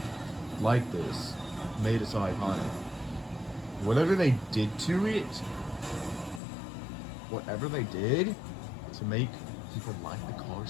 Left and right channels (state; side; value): drops out; right; at 6.4 s